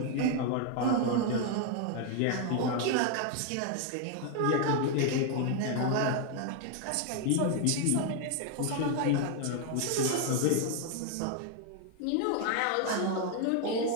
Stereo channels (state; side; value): different; both; correlation 0.01